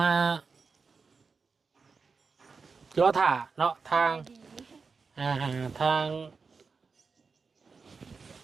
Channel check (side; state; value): left; quieter; 4.9 dB